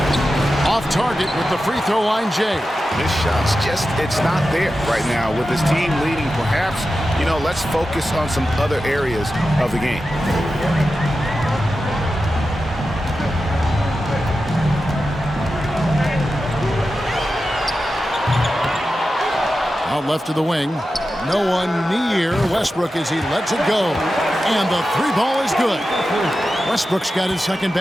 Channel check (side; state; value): both; normal; correlation 0.92